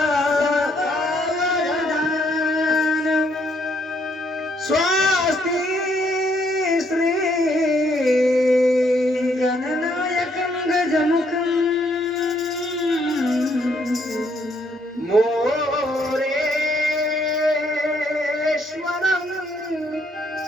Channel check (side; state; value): both; normal; correlation 0.70